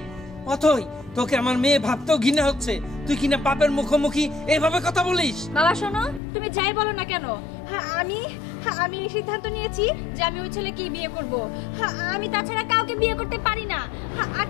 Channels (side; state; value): right; drops out; at 6.2 s